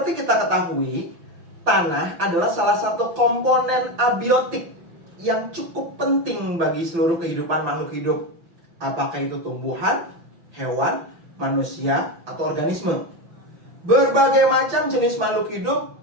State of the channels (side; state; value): left; late; 5.9 ms